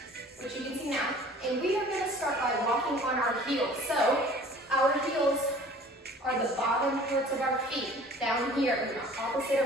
which you can see now. And we are gonna start by walking on our heels. So our heels are the bottom parts of our feet, down here, opposite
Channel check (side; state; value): both; normal; correlation 0.48